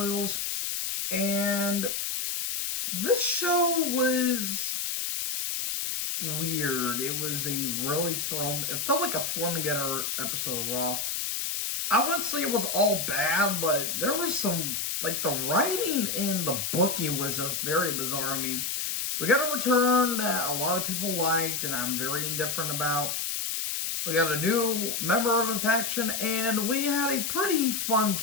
and this show was weird. It was it felt like a thrown together episode of Raw. I wouldn't say it was all bad, but there was some, like, the writing and the booking was just very bizarre. I mean, we got a return that a lot of people liked, and I'm very indifferent about. We got a new member of a faction, and we had a pretty fun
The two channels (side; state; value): left; noise; hiss, 1 dB below the sound